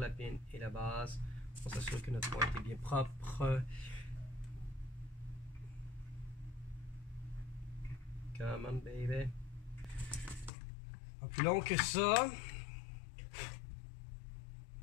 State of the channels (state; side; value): drops out; right; at 10.5 s